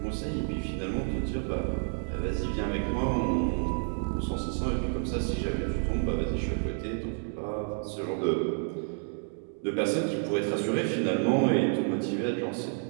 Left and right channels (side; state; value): left; silent; 58 dB below the other